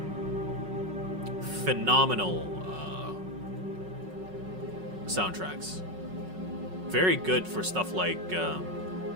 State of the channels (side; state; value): left; late; 5.4 ms